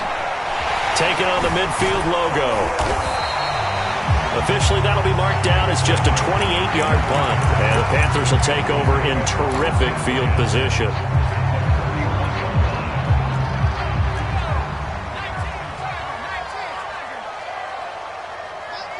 Taking on the midfield logo. Officially, that'll be marked down as just a 28-yard punt. And the Panthers will take over in terrific field position.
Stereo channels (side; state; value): both; identical; correlation 1.00